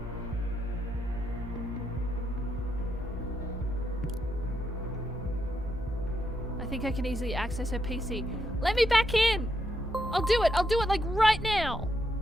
I think I can easily access her PC. Let me back in! I'll do it like right now!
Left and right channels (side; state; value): both; normal; correlation 0.81